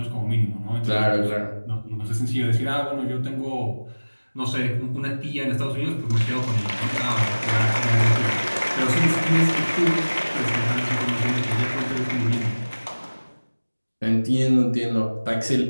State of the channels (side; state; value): both; inverted; correlation -1.00